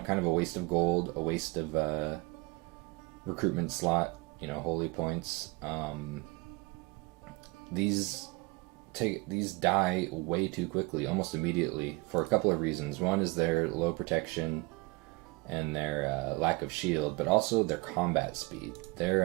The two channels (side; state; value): left; quieter; 26.0 dB